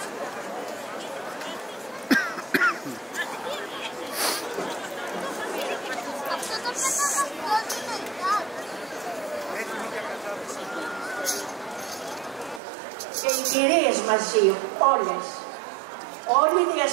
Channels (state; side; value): drops out; left; at 12.6 s